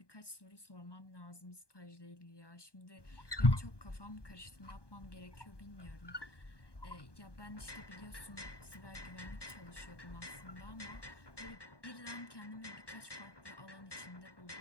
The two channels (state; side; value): late; right; 1.2 ms